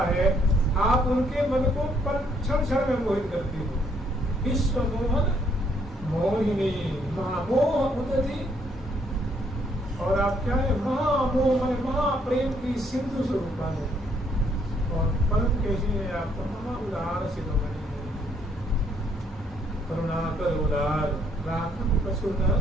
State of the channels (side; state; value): both; normal; correlation 0.69